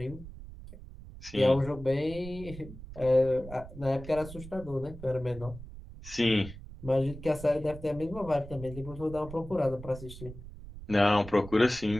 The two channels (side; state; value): right; noise; rumble, 14 dB below the sound